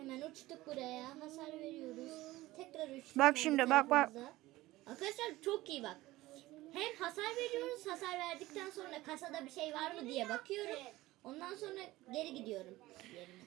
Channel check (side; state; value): left; quieter; 18.0 dB